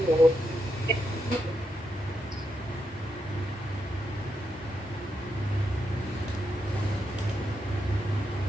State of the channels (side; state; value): both; normal; correlation 0.83